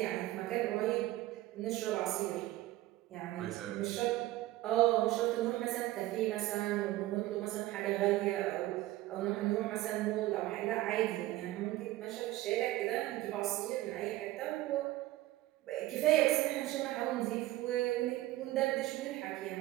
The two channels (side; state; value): left; quieter; 16.6 dB